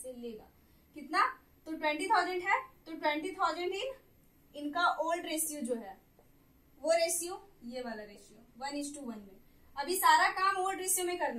लेगा। कितना? तो 20,000 है, तो 20,000 इनका ओल्ड रेशियो जो है वो रेशियो, ये वाला रेशियो 1:1 में। अभी सारा काम ओल्ड रेशियो में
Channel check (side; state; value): both; identical; correlation 1.00